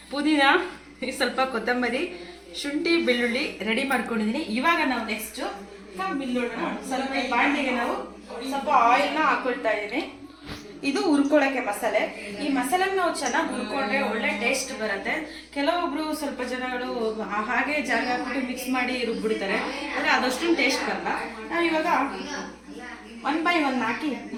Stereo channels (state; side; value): identical; both; correlation 1.00